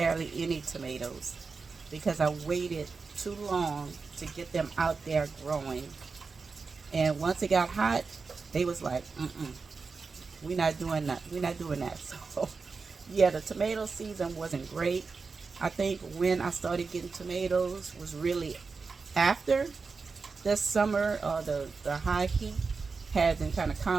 any tomatoes because I waited too long to get them out there growing. And once it got hot, they was like, we're not doing that. We're not doing that. So yeah, the tomato season wasn't great. I think when I started getting tomatoes was really after the summer or the high heat had been kind of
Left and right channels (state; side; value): quieter; left; 4.6 dB